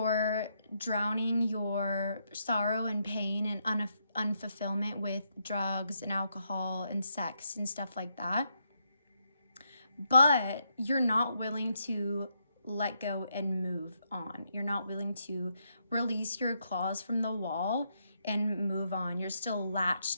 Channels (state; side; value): inverted; both; correlation -0.79